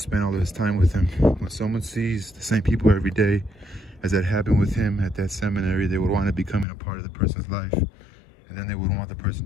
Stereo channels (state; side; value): drops out; right; at 6.7 s